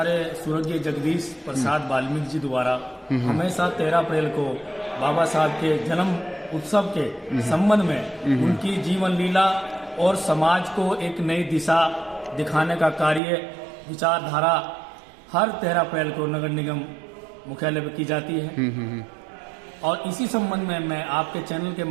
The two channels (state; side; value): drops out; left; at 13.2 s